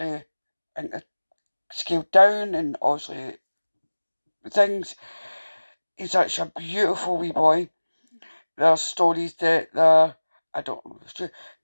scaled down, and obviously things. He's such a beautiful wee boy. There's stories that I don't know if it's true.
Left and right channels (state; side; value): inverted; both; correlation -1.00